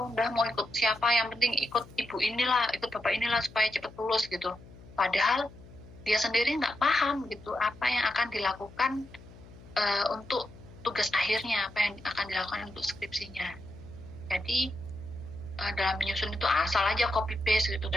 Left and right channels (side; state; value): left; noise; hum, 20 dB below the sound